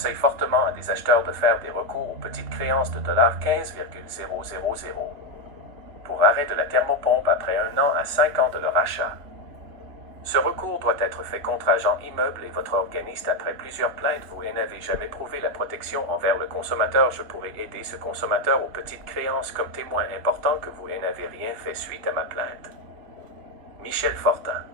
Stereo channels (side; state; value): left; late; 3.8 ms